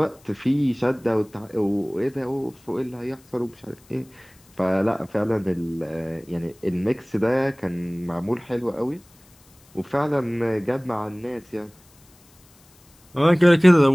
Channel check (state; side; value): noise; left; hiss, 29 dB below the sound